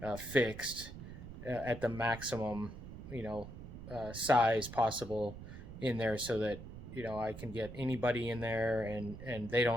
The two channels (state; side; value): noise; right; rumble, 12 dB below the sound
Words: fixed at the maximum, size possible in there, so that I can get anybody in there and they